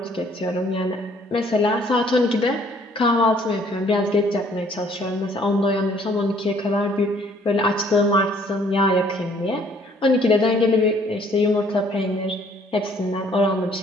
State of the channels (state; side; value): normal; both; correlation 0.61